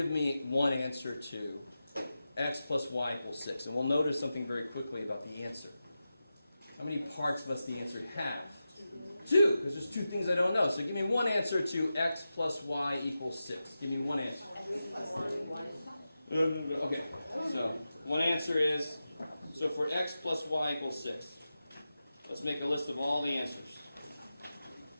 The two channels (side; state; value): both; inverted; correlation -0.92